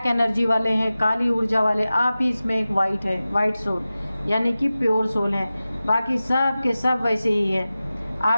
एनर्जी वाले हैं, काली ऊर्जा वाले। आप ही इसमें एक वाइट है, वाइट सोल यानी कि प्योर सोल है, बाकी सब के सब वैसे ही है।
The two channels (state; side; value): inverted; both; correlation -0.95